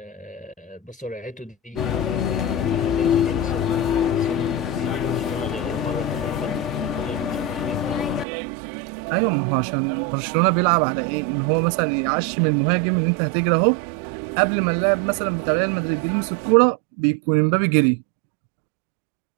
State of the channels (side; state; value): left; drops out; at 8.2 s